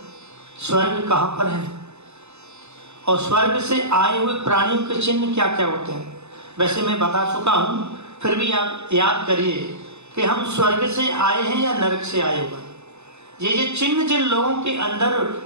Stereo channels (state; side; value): late; left; 0.81 ms